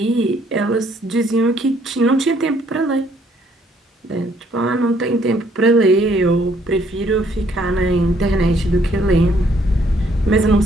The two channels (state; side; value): normal; both; correlation 0.66